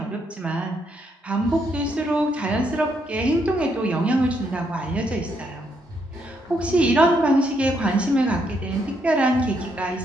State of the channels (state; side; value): normal; both; correlation 0.75